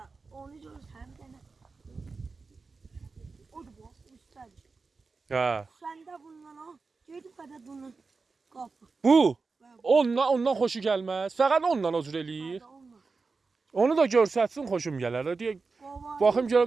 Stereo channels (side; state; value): left; quieter; 4.3 dB